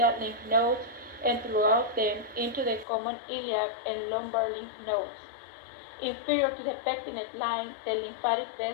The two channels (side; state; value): right; drops out; at 2.9 s